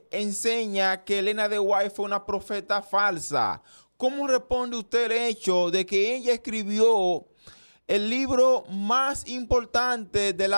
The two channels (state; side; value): inverted; both; correlation -1.00